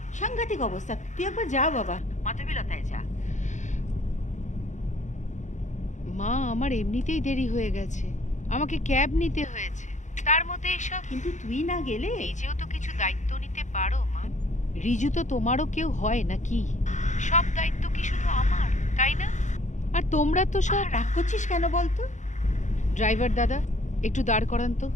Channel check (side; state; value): right; late; 0.35 ms